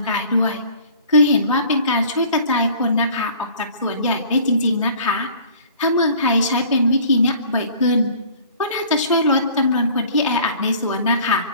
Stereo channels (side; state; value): both; inverted; correlation -0.50